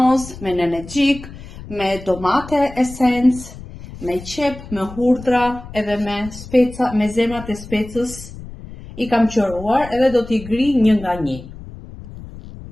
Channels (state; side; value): noise; left; rumble, 14 dB below the sound